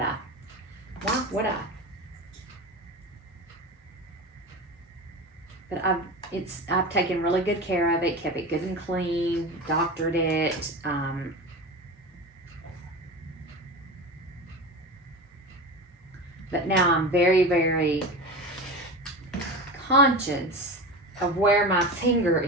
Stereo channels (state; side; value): normal; both; correlation 0.27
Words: Why would I? But I've taken really good care of it, kept it good and clean, doctored it. But now I'm very, very conscious of where my finger